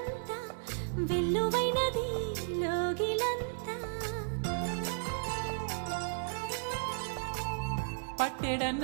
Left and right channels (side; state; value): left; silent; digital silence